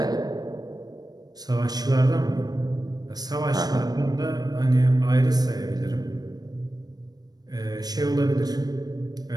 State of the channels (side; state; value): left; late; 0.19 ms